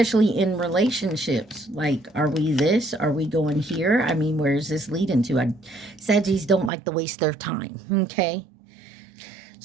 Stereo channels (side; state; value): left; drops out; at 6.7 s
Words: in relationships. Like, are we this? Are we going here? I mean, where is this leading to? Sagittarius don't like to waste their time, okay?